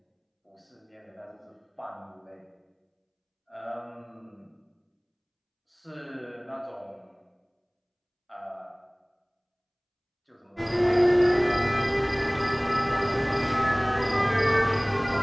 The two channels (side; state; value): both; identical; correlation 1.00